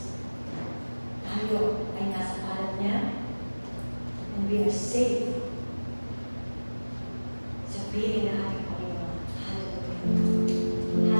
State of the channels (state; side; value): inverted; both; correlation -1.00